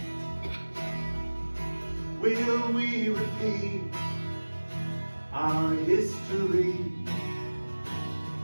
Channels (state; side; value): inverted; both; correlation -1.00